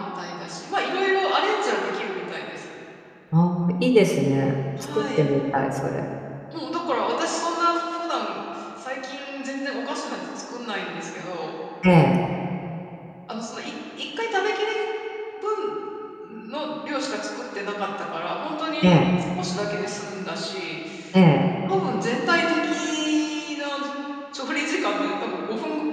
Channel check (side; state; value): both; identical; correlation 1.00